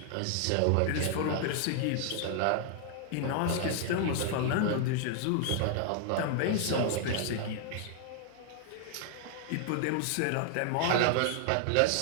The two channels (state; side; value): different; both; correlation 0.00